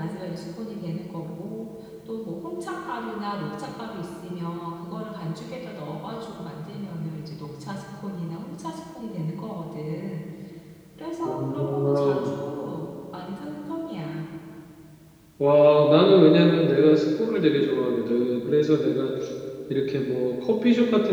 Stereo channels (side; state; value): both; identical; correlation 1.00